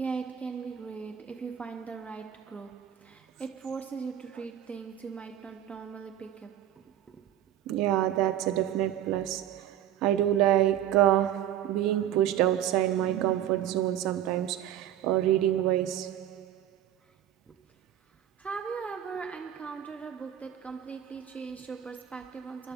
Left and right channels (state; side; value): quieter; left; 11.4 dB